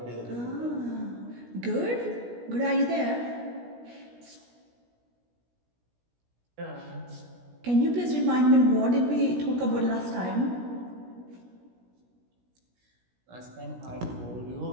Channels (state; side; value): late; left; 17 ms